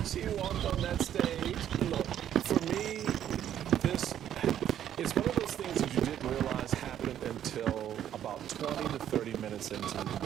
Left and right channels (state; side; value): quieter; left; 10.6 dB